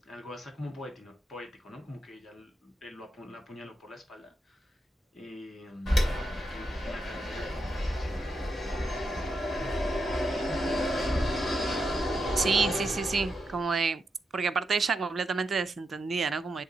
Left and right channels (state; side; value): normal; both; correlation 0.84